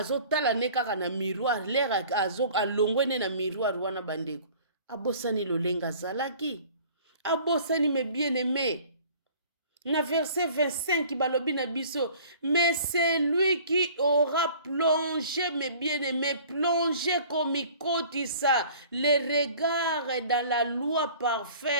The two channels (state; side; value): inverted; both; correlation -0.49